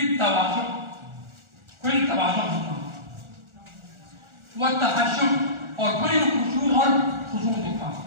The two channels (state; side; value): late; left; 1.4 ms